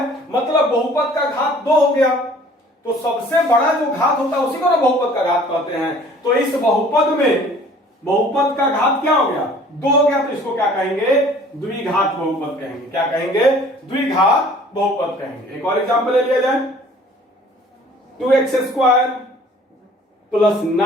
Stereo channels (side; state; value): both; normal; correlation 0.52